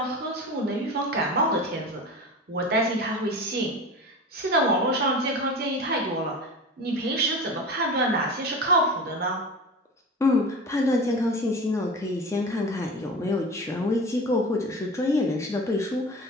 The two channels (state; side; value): normal; both; correlation 0.33